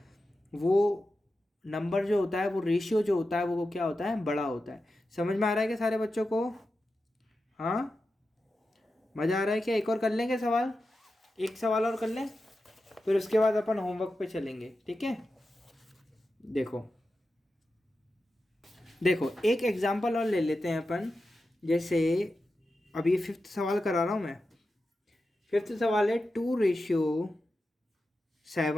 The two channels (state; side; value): normal; both; correlation 0.91